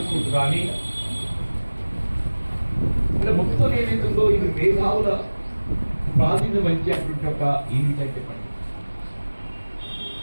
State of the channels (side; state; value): both; inverted; correlation -1.00